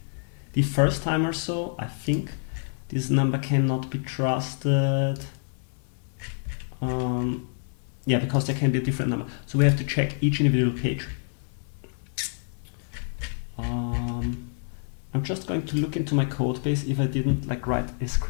the first time or so. I think this number cannot be trusted. Yeah, because there can be a different number. So we have to check each individual page. I'm just going to look into my code base if I didn't like write a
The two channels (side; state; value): right; silent; digital silence